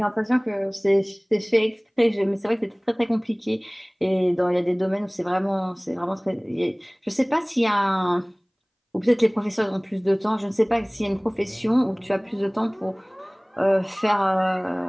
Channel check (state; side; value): identical; both; correlation 1.00